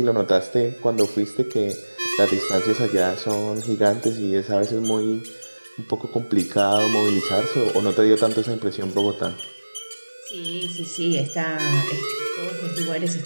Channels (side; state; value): both; inverted; correlation -1.00